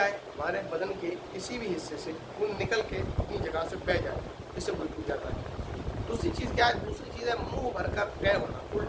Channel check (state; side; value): identical; both; correlation 1.00